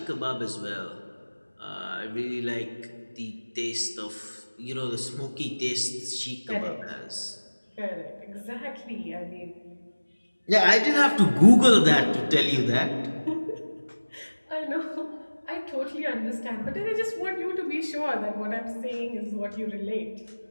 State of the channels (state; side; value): inverted; both; correlation -1.00